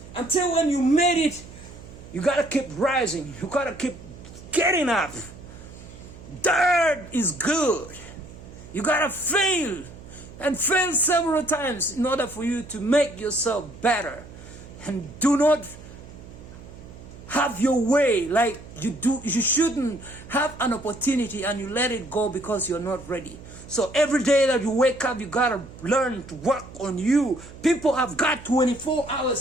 until when you made it, You gotta keep rising. You gotta keep getting up. Dirt is good. You gotta fail and fail several times in order for you to make yourself better. And do not have your way like you do. You shouldn't have an opportunity and you let it go because you're not ready. So every day that you wake up, you gotta learn to work on you. People have got 24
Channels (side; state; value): right; noise; hum, 17 dB below the sound